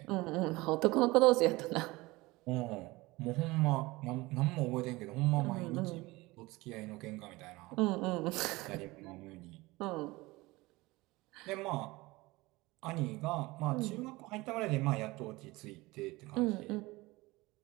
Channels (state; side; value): quieter; left; 21.4 dB